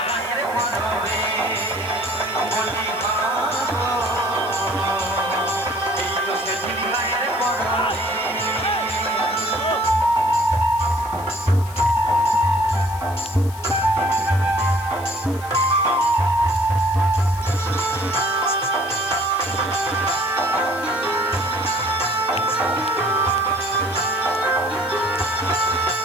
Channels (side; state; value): left; noise; hiss, 18 dB below the sound